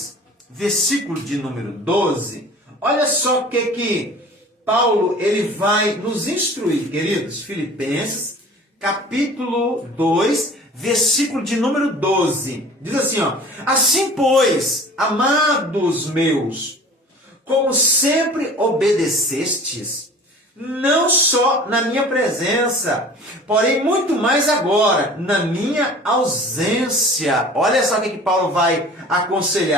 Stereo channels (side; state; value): both; normal; correlation 0.44